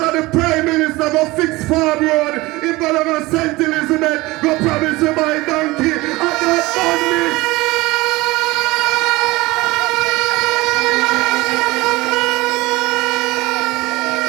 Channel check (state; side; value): quieter; left; 20.9 dB